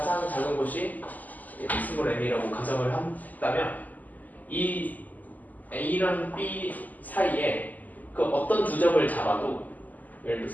작은 곳이 스몰 n이라고 가정을 했다면 이 A랑 B 사이에 그 어떤 두 점을 잡아도 예를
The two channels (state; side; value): late; right; 0.081 ms